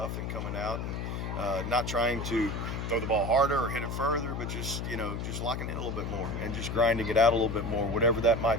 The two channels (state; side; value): noise; left; hum, 4 dB below the sound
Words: and coming out and not trying to throw the ball harder or hit it further, but just, you know, just locking in a little bit more and just grinding it out a little bit more, whatever that